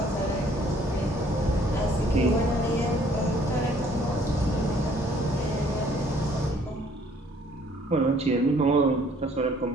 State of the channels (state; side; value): normal; both; correlation 0.60